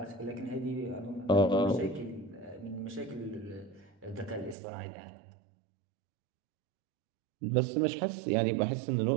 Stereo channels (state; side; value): drops out; left; at 4.5 s